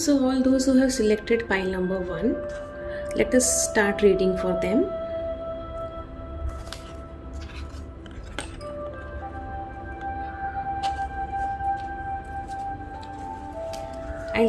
all those who have selected pile number 1, let us start reading for them.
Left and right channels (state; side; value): identical; both; correlation 1.00